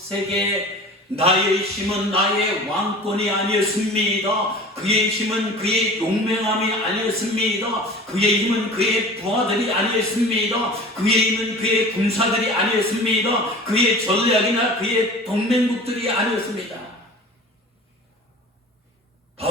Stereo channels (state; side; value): normal; both; correlation 0.40